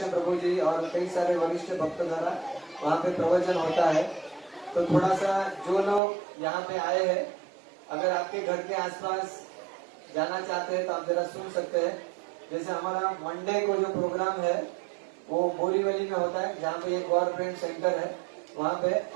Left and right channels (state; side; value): drops out; left; at 6.0 s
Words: प्रभु जी और कई सारे वरिष्ठ भक्त द्वारा वहाँ पे प्रवचन होता है। तो थोड़ा सा जो लोग यहाँ पे आए हैं, अगर आपके घर के आसपास जाना चाहते हैं तो आप जरा सुन सकते हैं। जैसे हमारा मंडे को जो प्रोग्राम है वो बोरीवली में होता है, जहाँ पे एक गवर्नमेंट सेंटर है वहाँ पे,